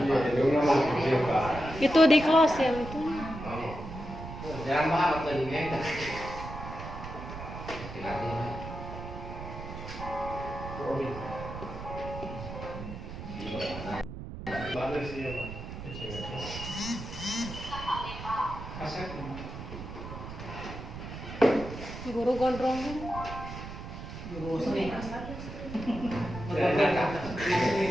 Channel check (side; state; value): right; noise; rumble, 10 dB below the sound